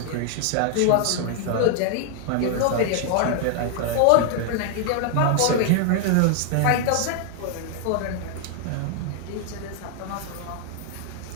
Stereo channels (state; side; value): different; both; correlation 0.00